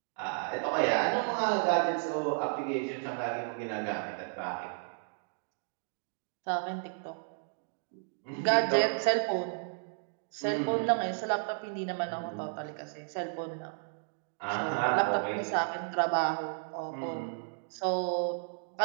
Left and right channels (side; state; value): left; silent; digital silence